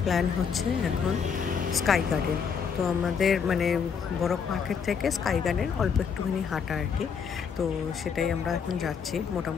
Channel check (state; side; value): quieter; right; 6.6 dB